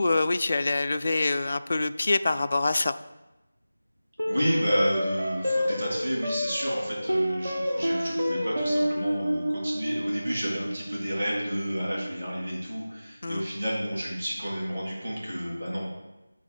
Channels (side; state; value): both; inverted; correlation -0.96